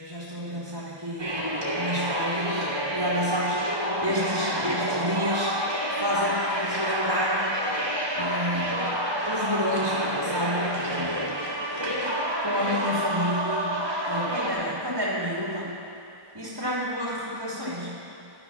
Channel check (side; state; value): left; late; 1.1 ms